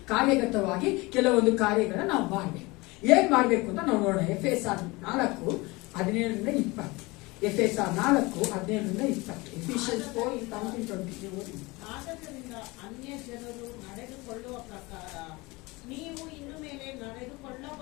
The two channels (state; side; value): quieter; right; 23.5 dB